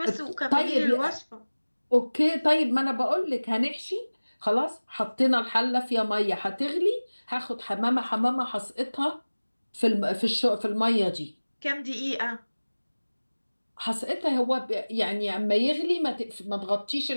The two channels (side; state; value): both; inverted; correlation -1.00